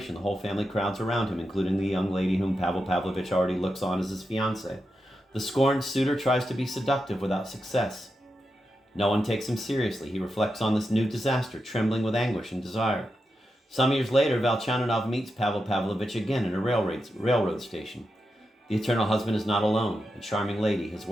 The whole family crowds around him, including the young lady whom Pavel Pavlovich already looks on as his fiancée. The scorned suitor tries to be seductive without success. No one takes him seriously. He reflects on this new disaster, trembling with anguish and desire. Some years later, Velcheninov meets Pavel Pavlovich again at a railroad station. The eternal husband is not alone. A charming lady, his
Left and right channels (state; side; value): normal; both; correlation 0.88